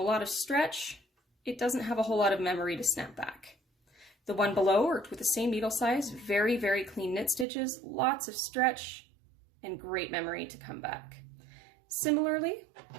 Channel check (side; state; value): left; drops out; at 7.5 s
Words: lot of stretch, it doesn't have a whole lot of memory to snap back. The one below worked with the same needle size, very, very clean knit stitches, lots of stretch, and great memory to come back. Similarly,